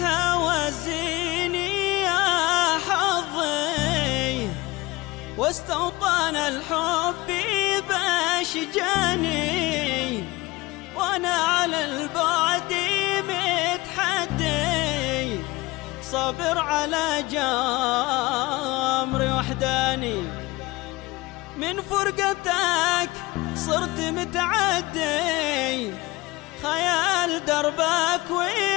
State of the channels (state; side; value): quieter; right; 21.4 dB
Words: يا حظي، واستوطن الحب باشجاني، وانا على البعد متحدي، صابر على جمري وحداني. من فرقتك صرت متعدي، خيال دربك